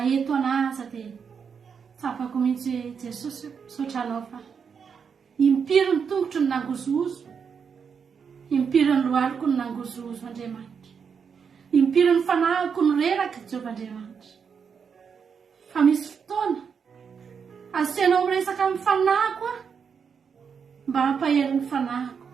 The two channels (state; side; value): quieter; left; 6.5 dB